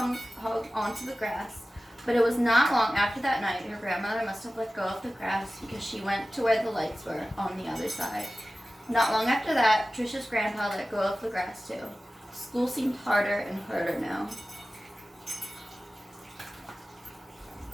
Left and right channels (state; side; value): normal; both; correlation 0.96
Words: onto the grass. But it was not long after that night her grandmother must have let go of the grass because she went to where the lights were on the other side. Not long after that, Trisha's grandpa let go of the grass too. School seemed harder and harder now.